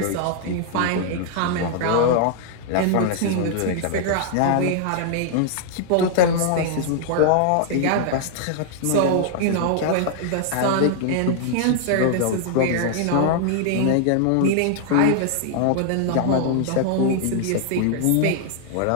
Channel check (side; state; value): both; different; correlation -0.01